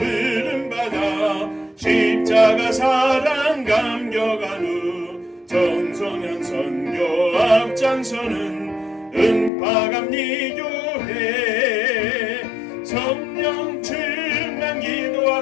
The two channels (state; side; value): drops out; right; at 9.5 s